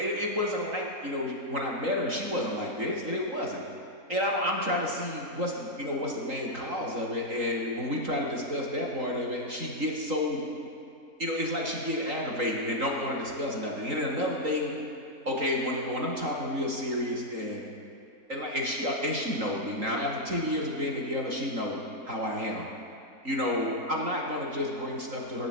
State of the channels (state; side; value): late; left; 3.8 ms